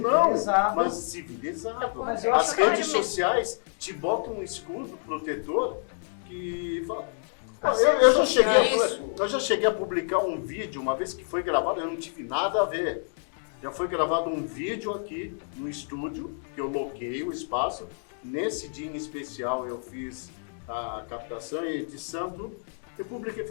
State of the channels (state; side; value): silent; right; digital silence